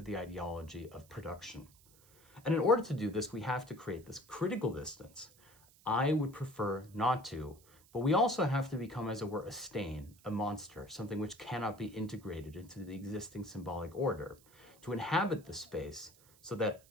the ideology of production. And in order to do this, we have to create this critical distance. I would prefer not to, but we also have to become, as it were, a stain, a monster, something which cannot be integrated into the existing symbolic order, to inhabit the space so that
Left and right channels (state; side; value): noise; right; hiss, 26 dB below the sound